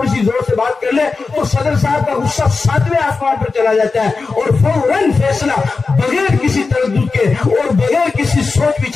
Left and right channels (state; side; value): quieter; right; 4.3 dB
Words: سی زور سے بات کر لے تو صدر صاحب کا غصہ 7ویں آسمان پر چلا جاتا ہے اور فوراً فیصلہ بغیر کسی تردد کے اور بغیر کسی سوچ